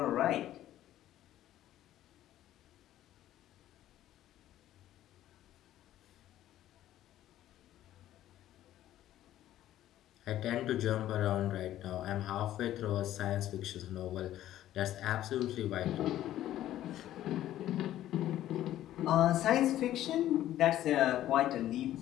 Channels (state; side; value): quieter; right; 13.1 dB